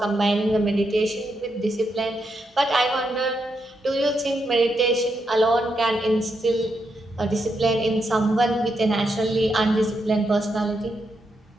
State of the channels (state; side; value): normal; both; correlation 0.82